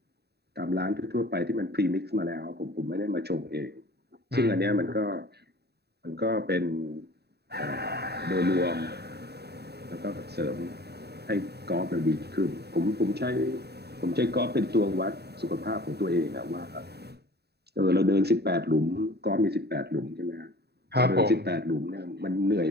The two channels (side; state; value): left; late; 0.48 ms